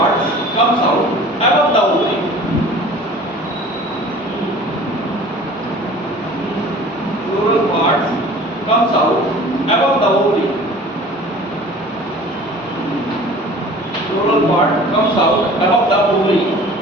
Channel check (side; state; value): both; normal; correlation 0.45